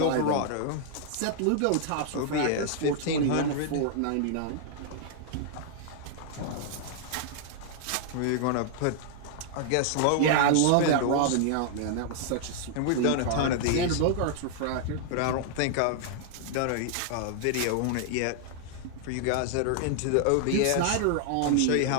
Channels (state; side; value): different; both; correlation 0.00